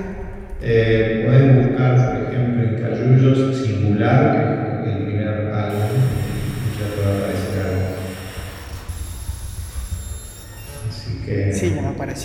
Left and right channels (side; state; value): both; identical; correlation 1.00